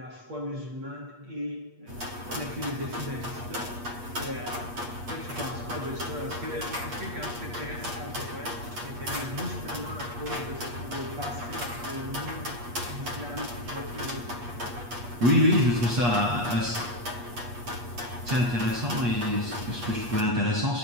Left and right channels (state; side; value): late; left; 8.4 ms